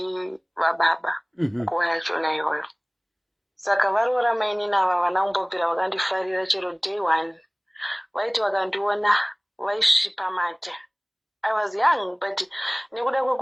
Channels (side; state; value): both; identical; correlation 1.00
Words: vababa nguva yachona iyoyo. Saka varoora mainini ava vana kumbobvira vakandifarira chero day one. Vaiti vakandiona vaisvipa mate. I was young, but nekuda